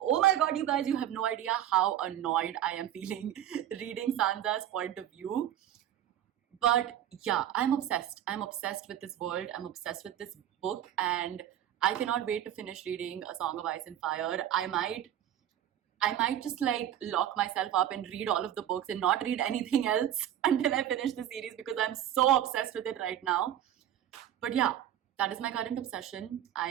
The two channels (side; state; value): left; quieter; 11.2 dB